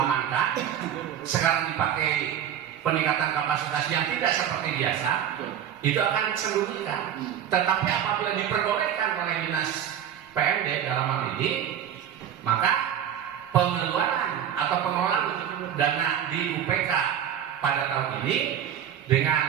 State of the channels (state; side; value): quieter; left; 9.6 dB